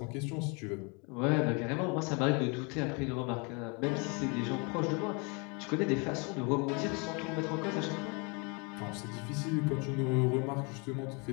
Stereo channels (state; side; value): quieter; right; 32.1 dB